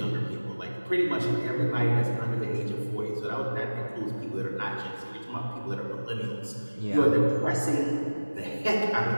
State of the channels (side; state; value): both; inverted; correlation -1.00